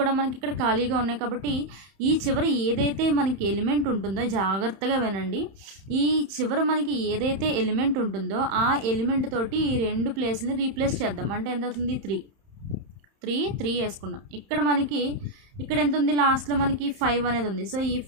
కూడా మనకి ఇక్కడ ఖాళీగా ఉన్నాయి. కాబట్టి ఈ చివర ఏదైతే మనకి ఎలిమెంట్ ఉంటుందో జాగ్రత్తగా వినండి. ఈ చివర మనకి ఏదైతే ఎలిమెంట్ ఉంటుందో ఆ ఎలిమెంట్ తోటి ఈ రెండు ప్లేస్ని రీప్లేస్ చేద్దాం. అంటే ఎంత అవుతుంది? 3 వేసుకున్నాం. ఇక్కడ ఎంత ఉంది? లాస్ట్లో మనకి 5 అనేది ఉంది. సో ఈ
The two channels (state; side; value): late; left; 31 ms